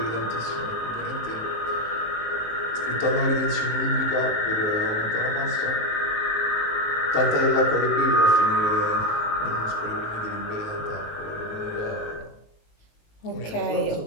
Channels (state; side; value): late; right; 19 ms